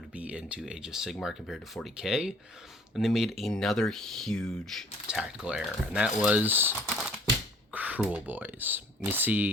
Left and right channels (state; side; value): normal; both; correlation 0.54